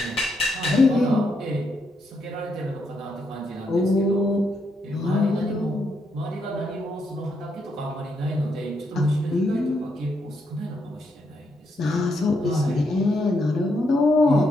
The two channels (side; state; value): both; normal; correlation 0.78